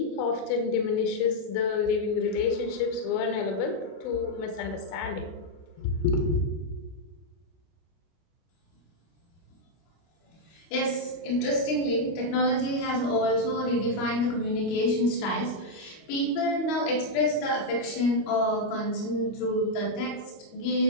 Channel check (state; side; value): late; right; 25 ms